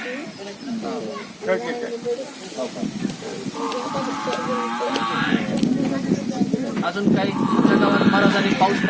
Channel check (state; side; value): identical; both; correlation 1.00